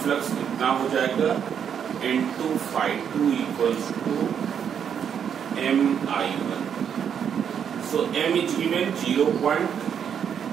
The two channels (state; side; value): quieter; left; 8.0 dB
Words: फ्लक्स कितना हो जाएगा? N2∅2 equals to Mi1. So M is given